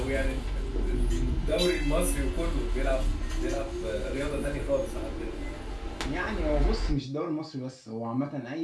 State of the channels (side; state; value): both; identical; correlation 1.00